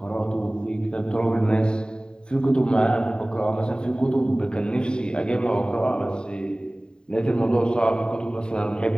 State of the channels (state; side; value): late; right; 0.048 ms